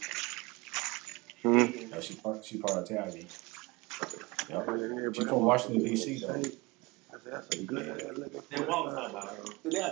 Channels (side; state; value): left; quieter; 24.0 dB